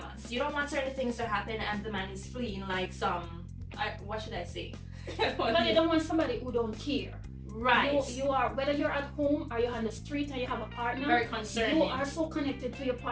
You don't want certain things to happen and the man is fleeing like some, what should I say? But you don't want somebody who don't care. Right. You are, whether you're at home or you're on the street and you have a partner, Very concerning. you are so connected to your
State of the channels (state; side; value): identical; both; correlation 1.00